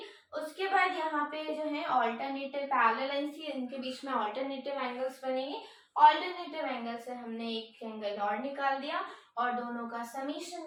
उसके बाद यहाँ पे जो है ऑल्टरनेटिव पैरेलल लाइंस थी, इनके बीच में ऑल्टरनेटिव एंगल्स बनेंगे। ऑल्टरनेटिव एंगल से हमने एक एंगल और निकाल दिया और दोनों का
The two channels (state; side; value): identical; both; correlation 1.00